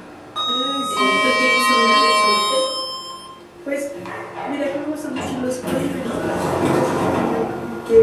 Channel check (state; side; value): identical; both; correlation 1.00